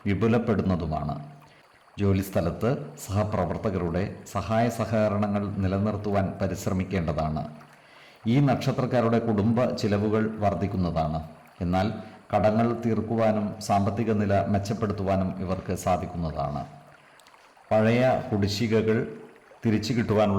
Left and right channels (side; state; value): both; identical; correlation 1.00